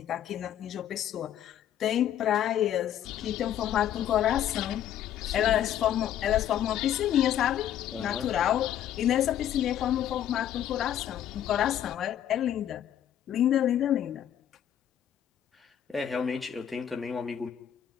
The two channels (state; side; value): quieter; right; 10.6 dB